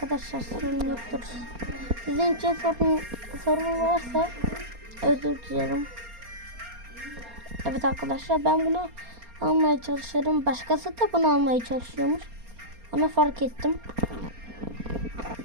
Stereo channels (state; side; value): late; left; 4.3 ms